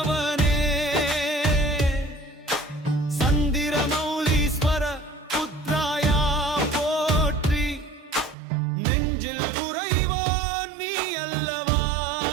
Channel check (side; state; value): left; drops out; at 8.3 s